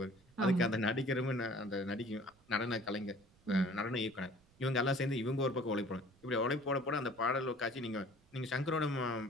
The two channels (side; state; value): right; noise; rumble, 30 dB below the sound